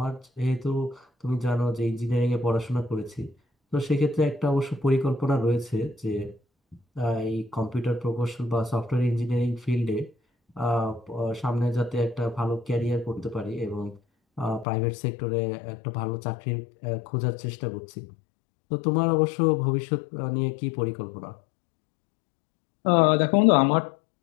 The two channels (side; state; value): right; drops out; at 14.7 s